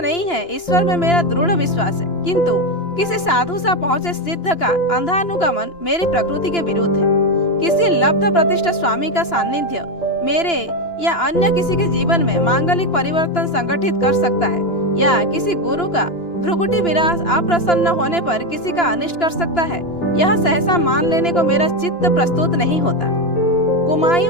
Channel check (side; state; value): right; late; 2.9 ms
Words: है, ईश्वर में मेरा दृढ़ विश्वास है, किंतु किसी साधु सा पहुंचे सिद्ध का अंधानुगमन मेरी प्रकृति के विरुद्ध है। किसी लब्ध प्रतिष्ठ स्वामी का सानिध्य मेरे या अन्य किसी के जीवन में मांगलिक परिवर्तन संगठित कर सकता है, या किसी गुरु का भ्रुकुटी विलास अप्रसन्न होने पर किसी का अनिष्ट कर सकता है, यह सहसा मान लेने को मेरा चित्त प्रस्तुत नहीं होता।